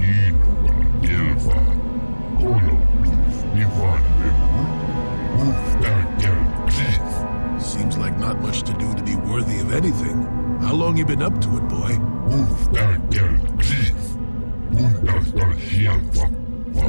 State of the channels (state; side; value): inverted; both; correlation -1.00